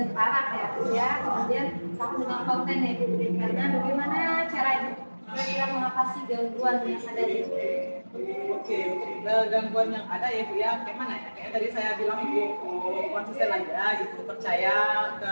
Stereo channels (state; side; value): inverted; both; correlation -1.00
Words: terarah ya. Kemudian kamu dengan konten yang diberikan. Nah bagaimana cara kira-kira mengatasi gangguan yang ada di Oke, gangguan yang ada ya Bu ya, kayak mana ya? Kayak tadi saya bilang Bu, konsisten aja gitu, percaya